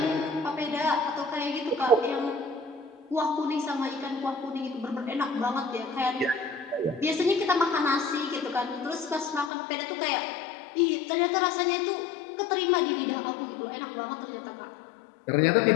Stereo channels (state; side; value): drops out; right; at 9.5 s